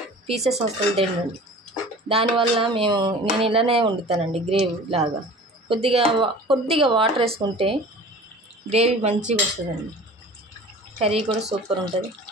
పీసెస్ అసలు తినండి. దానివల్ల నేను ఇలానే వండుతానండి, గ్రేవీ లాగా. కొద్దిగా వాటర్ వేసుకుంటే గ్రేవీ మంచిగా వస్తుందండి. కర్రీ కూడా సూపర్ ఉంటుంది.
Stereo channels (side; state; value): both; normal; correlation 0.42